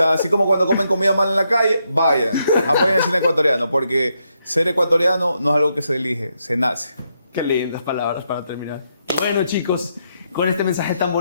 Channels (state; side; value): inverted; both; correlation -0.80